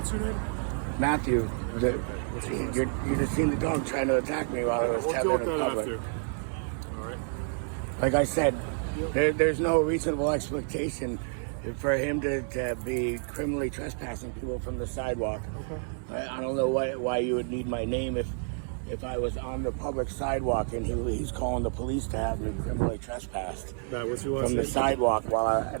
your name? Matthew. You just seen the dog trying to attack me while I was tethered in public. All right. Like I said, there's no reasonable expectation for him to be criminally trespassing people from the sidewalk. Okay. I don't know why you would need my name if I was on the public sidewalk and he's calling the police to have me criminally trespassed from the sidewalk while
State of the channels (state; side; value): silent; left; 58 dB below the other